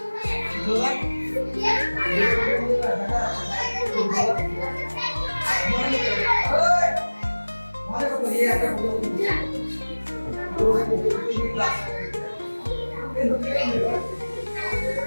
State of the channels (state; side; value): inverted; both; correlation -1.00